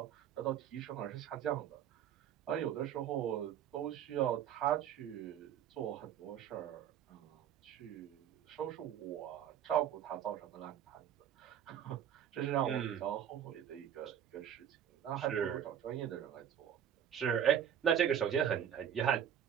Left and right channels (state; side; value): quieter; left; 9.6 dB